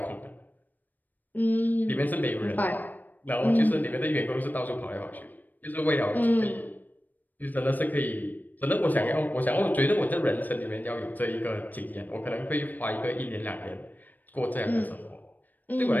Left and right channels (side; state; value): right; late; 0.085 ms